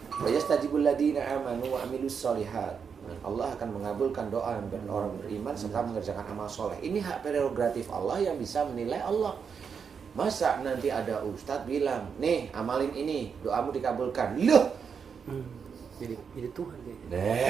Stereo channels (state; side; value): quieter; left; 6.4 dB